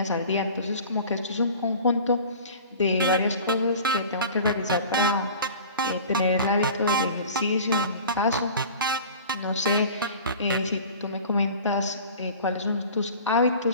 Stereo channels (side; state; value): both; inverted; correlation -0.41